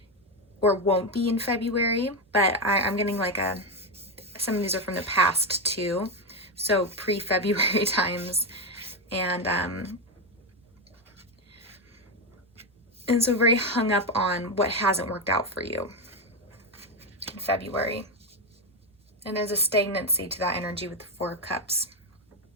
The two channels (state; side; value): normal; both; correlation 0.09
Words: won't be in February. But I'm getting like some of these are from the past too, so pre-February times, and so very hung up on what hasn't worked out for you in February. And there's a stagnancy to that energy with the Four of Cups.